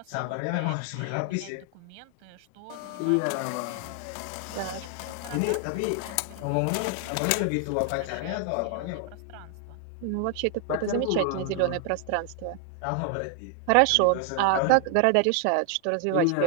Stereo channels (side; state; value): both; different; correlation 0.00